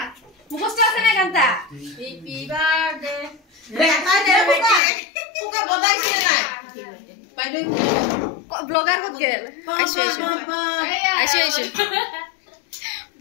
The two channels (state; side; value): drops out; right; at 4.8 s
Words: মুখস্থ আছে না গানটা হ্যাপি বার্থডে পুকা বদাইছে নাই বাইদে ব্লগার কত গেল আইছো